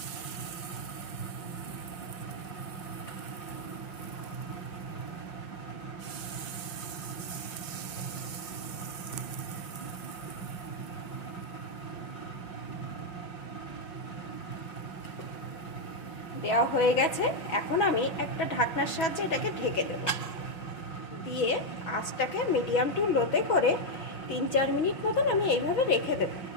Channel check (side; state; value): right; late; 6.1 ms